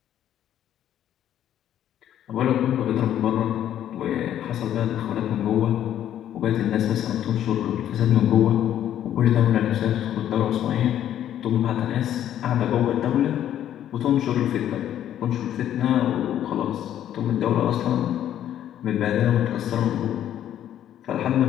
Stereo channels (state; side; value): quieter; right; 11.0 dB